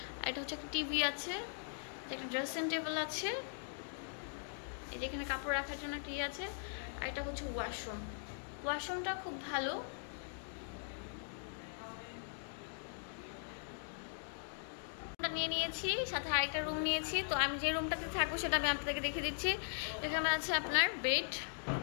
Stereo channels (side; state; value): right; silent; digital silence